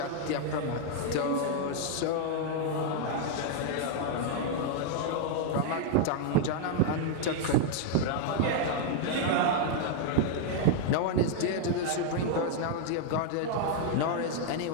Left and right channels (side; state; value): both; different; correlation 0.00